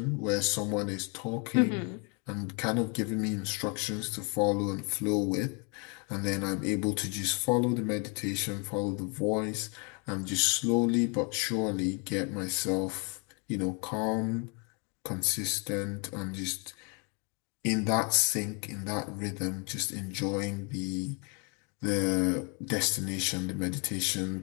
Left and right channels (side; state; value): right; quieter; 33.7 dB